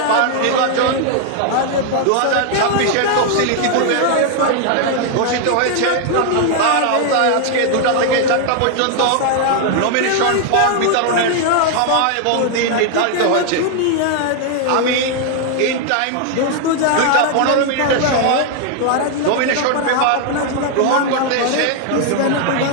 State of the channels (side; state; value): both; different; correlation 0.00